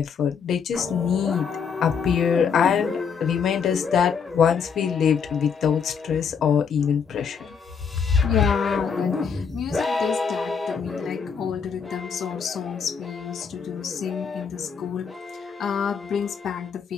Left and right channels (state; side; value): quieter; right; 6.5 dB